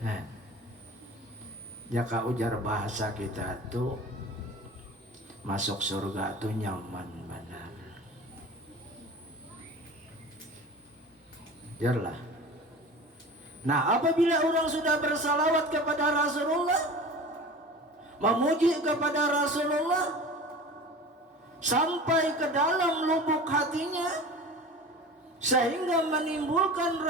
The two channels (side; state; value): both; normal; correlation 0.37